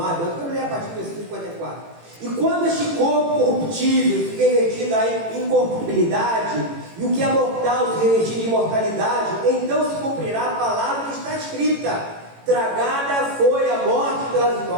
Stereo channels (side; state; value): left; late; 18 ms